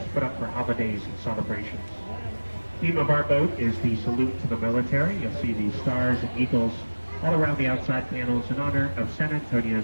put up for holidays and celebrations. The theme of our boat is the salute to the military. You'll see the stars and eagles all around the outside panels in honor of San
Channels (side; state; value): both; inverted; correlation -1.00